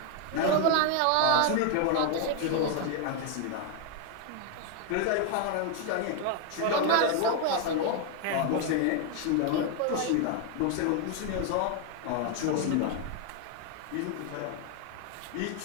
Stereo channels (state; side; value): different; both; correlation 0.00